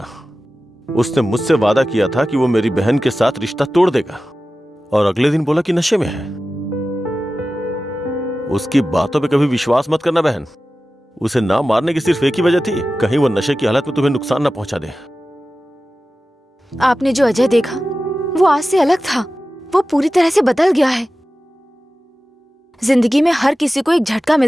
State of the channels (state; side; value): normal; both; correlation 0.95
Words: उसने मुझसे वादा किया था कि वो मेरी बहन के साथ रिश्ता तोड़ देगा, और अगले दिन बोला कि नशे में है। उसकी बातों पे कभी विश्वास मत करना बहन। उसे ना मारने की सिर्फ एक ही वजह थी, कहीं वो नशे की हालत में तुम्हें नुकसान ना पहुंचा दे। आपने जो अजय देखा वो आज से अलग था। वो पूरी तरह से बदल गया है। जिंदगी में हर किसी को एक झटका